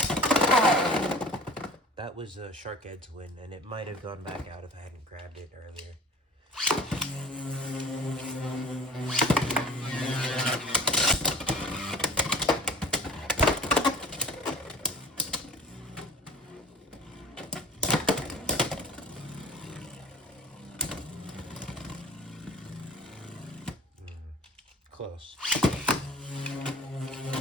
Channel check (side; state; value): both; normal; correlation 0.41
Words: That was a Shark Edge win, and it might have gone back out if I hadn't grabbed it earlier. Close.